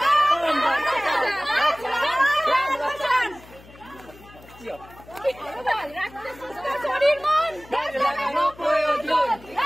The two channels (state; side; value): noise; left; hum, 22 dB below the sound